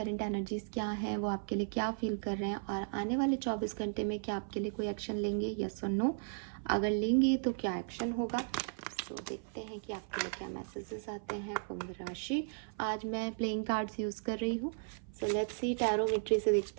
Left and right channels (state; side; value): silent; left; 54 dB below the other